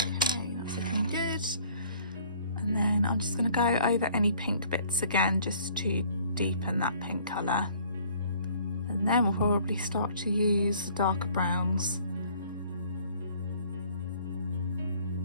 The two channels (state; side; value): inverted; both; correlation -0.56